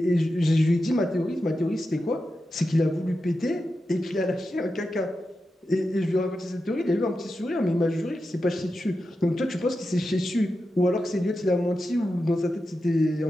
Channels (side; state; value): both; normal; correlation 0.90